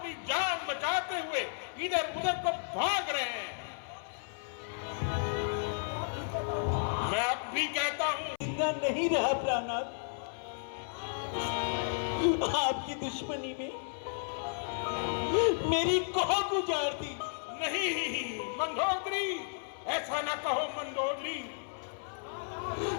जान बचाते हुए इधर उधर को भाग रहे हैं। मैं अब भी कहता हूं, जिंदा नहीं रहा प्राणनाथ। आपकी दुश्मनी में मेरी कोख उजाड़ दी। नहीं मंदोदरी, ऐसा ना कहो मंदोदरी।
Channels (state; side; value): silent; right; 56 dB below the other